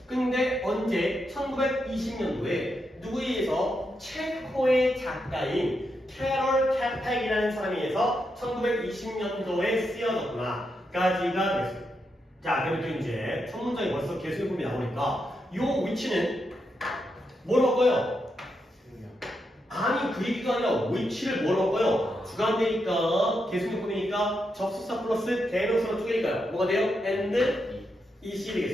근데 언제? 1920년도에 누구에 의해서 체코의 작가인 캐럴 캐팩이라는 사람에 의해서 1920년도에 쓰여졌구나 까지가 됐어요. 자, 그리고 이제 첫 문장이 벌써 계속해봄이 나오니까 요 위치는 뭐로 바꿔요? 아니 그 얘기가 아니라 위치를 뭐로 바꿔요? 주관되니까 계속해봄이니까 접속사 플러스 대명사로 쪼개니까요. 뭐가 돼요? and 이시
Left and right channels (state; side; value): normal; both; correlation 0.83